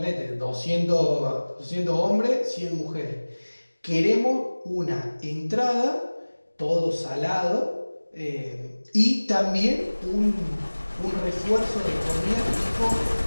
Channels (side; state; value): both; inverted; correlation -1.00